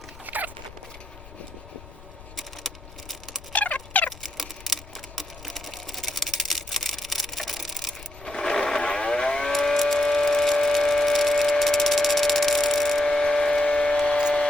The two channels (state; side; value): noise; left; rumble, 19 dB below the sound